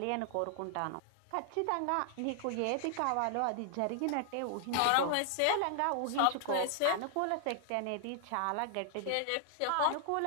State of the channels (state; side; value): different; both; correlation 0.00